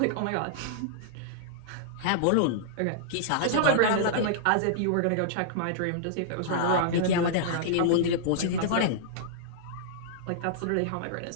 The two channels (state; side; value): different; both; correlation -0.02